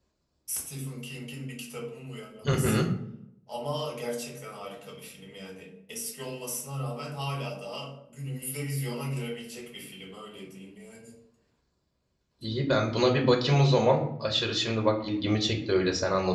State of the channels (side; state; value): both; identical; correlation 1.00